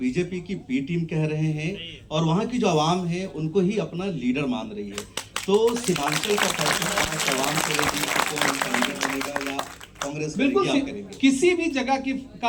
बीजेपी की बी टीम कह रहे हैं और वहां की जो आवाम है उनको ही अपना लीडर मान रही है। तो सीमांचल का फैसला आवाम करेगी, कौन लीडर बनेगा या कांग्रेस बिल्कुल करेगी? किसी भी जगह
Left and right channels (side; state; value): both; identical; correlation 1.00